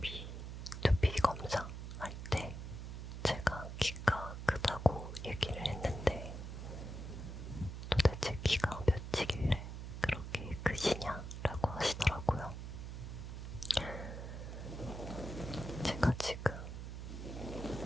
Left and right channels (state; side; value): noise; right; hum, 7 dB below the sound